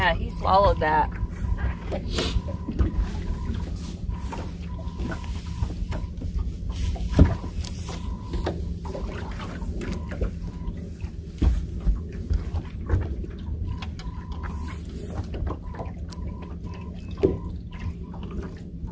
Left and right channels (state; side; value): identical; both; correlation 1.00